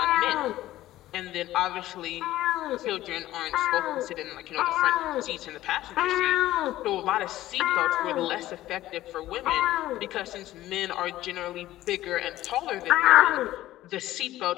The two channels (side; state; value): right; quieter; 15.0 dB